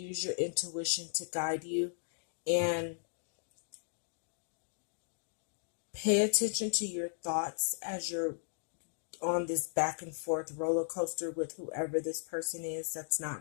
your intuition to guide you, and pay attention to your thoughts as you're on this back and forth roller coaster with whoever this person is that's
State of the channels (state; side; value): silent; right; digital silence